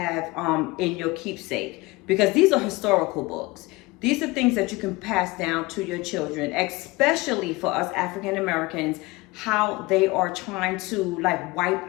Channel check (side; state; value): right; quieter; 22.3 dB